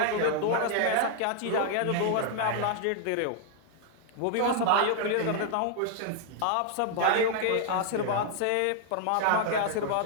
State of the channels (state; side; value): different; both; correlation 0.00